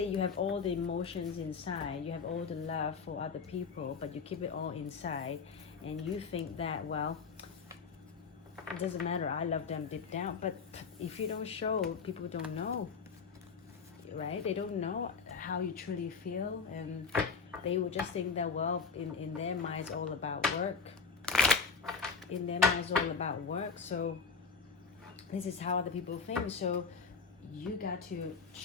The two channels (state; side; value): quieter; right; 5.4 dB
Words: you have all the emotions inside, you have all the love for other people, but you keep it all inside, and you think that, well, it doesn't matter, I love them deep down. But if you don't show, people don't know, right? They don't know how you truly feel, and they will just think that, well, in their mind it's all about work. In their mind it's all about work. So this is how other people think. So you got to